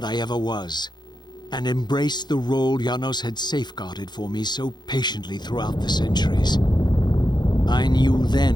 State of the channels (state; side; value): late; right; 0.21 ms